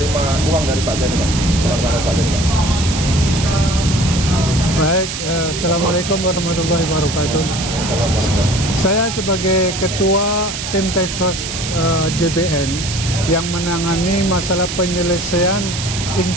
uang dari Pak Jani Pak. Selamat Pak Jani. Baik, Assalamualaikum warahmatullahi wabarakatuh. Saya sebagai Ketua Tim Task Force JBN yang menangani masalah penyelesaian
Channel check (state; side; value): noise; right; hiss, 6 dB below the sound